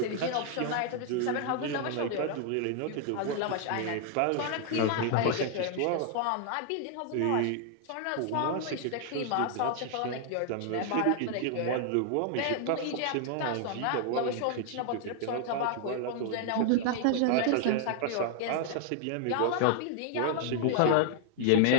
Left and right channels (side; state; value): both; different; correlation 0.00